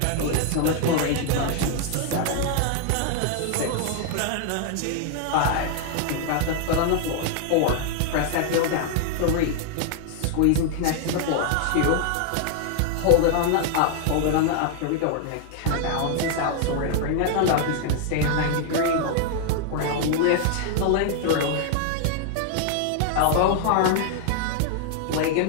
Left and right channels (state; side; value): different; both; correlation 0.00